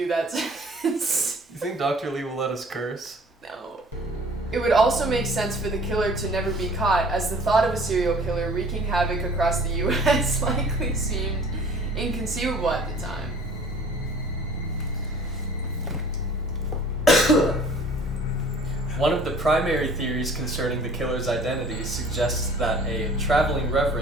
that sentence. You think Dr. Lee will let us curse? No. It would also make sense for the killer to never be caught, as the thought of a serial killer wreaking havoc across the U.S. likely seemed inconceivable at the time. One of the primary theories concerning the killer's identity suggests that a traveling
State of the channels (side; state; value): both; normal; correlation 0.50